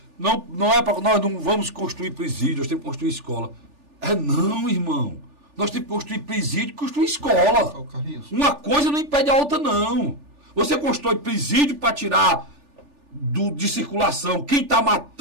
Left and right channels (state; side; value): late; left; 3.4 ms